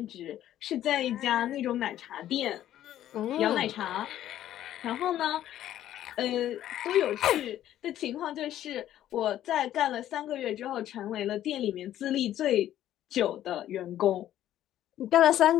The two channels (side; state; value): right; quieter; 12.2 dB